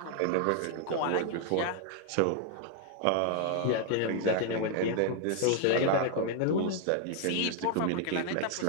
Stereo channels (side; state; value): both; different; correlation 0.00